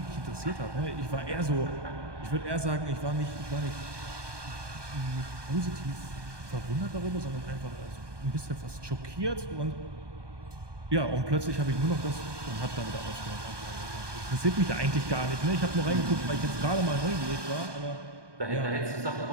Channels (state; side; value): late; left; 1.2 ms